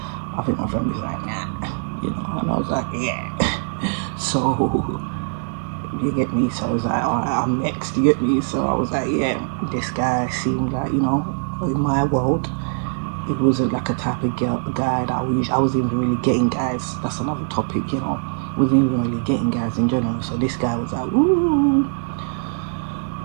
I think my friend was like, nah, and I was like, yeah. So you get me, so I was like, alright, I'm next, you get me. So I was like, yeah, this guy seemed like, in my world, it wasn't like a type of guy that I wasn't even really getting guys. That's another topic, wasn't even really getting guys in general. So this guy was like, ooh.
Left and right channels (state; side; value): silent; left; 58 dB below the other